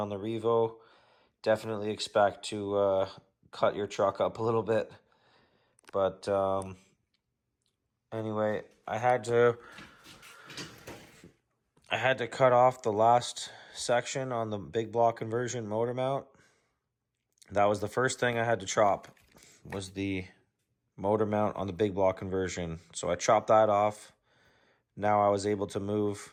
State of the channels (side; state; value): both; identical; correlation 1.00